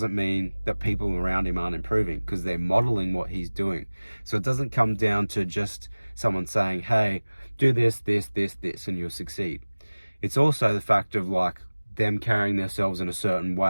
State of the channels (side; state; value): both; inverted; correlation -1.00